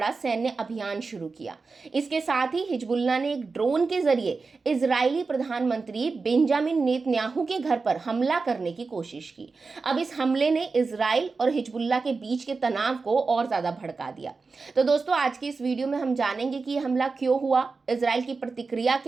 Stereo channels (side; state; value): left; quieter; 4.3 dB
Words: सैन्य अभियान शुरू किया। इसके साथ ही हिजबुल्लाह ने एक ड्रोन के जरिए इजरायली प्रधानमंत्री बेंजामिन नेतन्याहू के घर पर हमला करने की कोशिश की। अब इस हमले ने इजराइल और हिजबुल्लाह के बीच के तनाव को और ज़्यादा भड़का दिया। तो दोस्तों, आज की इस वीडियो में हम जानेंगे कि यह हमला क्यों हुआ, इजराइल की प्रतिक्रिया